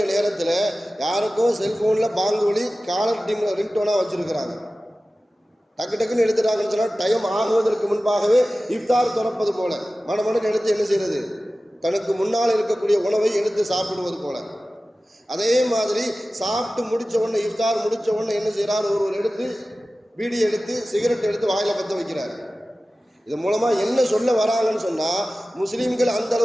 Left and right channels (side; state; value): both; normal; correlation 0.96